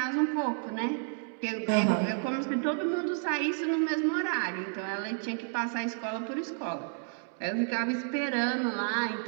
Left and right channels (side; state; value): left; silent; 57 dB below the other